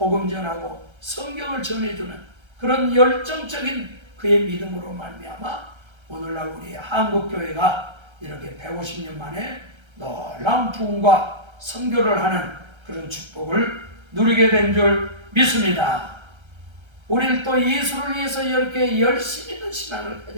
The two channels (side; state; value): left; late; 1.3 ms